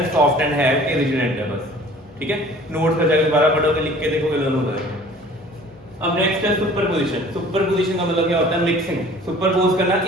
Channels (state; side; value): normal; both; correlation 0.49